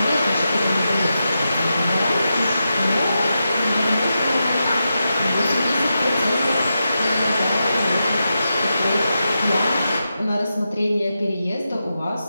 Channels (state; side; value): inverted; both; correlation -0.88